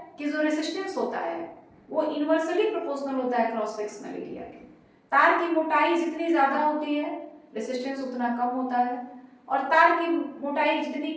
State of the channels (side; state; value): both; identical; correlation 1.00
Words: कि जो रेसिस्टेंस होता है वो इनवर्सली प्रोपोर्शनल होता है क्रॉस सेक्शनल एरिया के। तार की मोटाई जितनी ज्यादा होती है रेसिस्टेंस उतना कम होता है, और तार की मोटाई जितनी